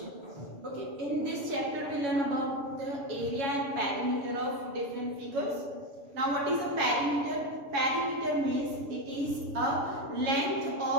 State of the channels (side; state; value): left; late; 7.2 ms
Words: Okay, in this chapter we learn about the area and perimeter of different figures. Now what is a perimeter? Perimeter means it is a length